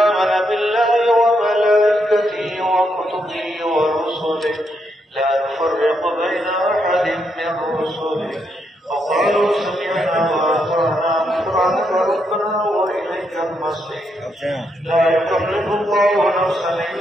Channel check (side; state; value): both; normal; correlation 0.79